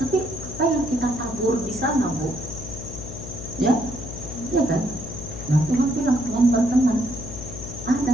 Tapi apa yang kita tabur di sana, Bu? Ya, ya kan? Nah Tuhan bilang, Tuhan berkenan.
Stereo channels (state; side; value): noise; left; hum, 10 dB below the sound